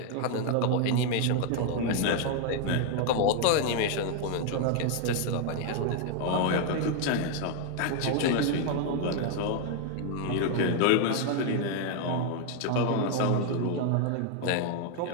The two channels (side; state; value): both; different; correlation 0.00